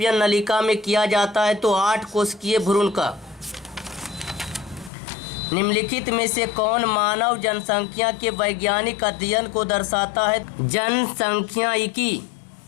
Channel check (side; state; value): right; drops out; at 4.9 s